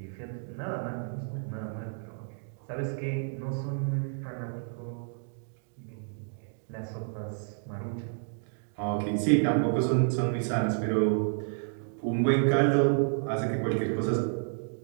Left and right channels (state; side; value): silent; left; digital silence